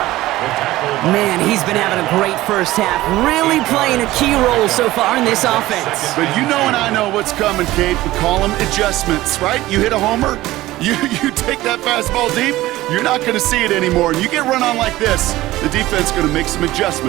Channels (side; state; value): left; quieter; 16.9 dB